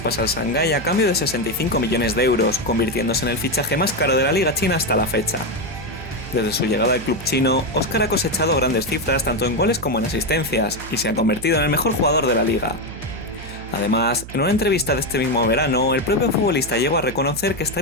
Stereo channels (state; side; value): noise; right; hum, 13 dB below the sound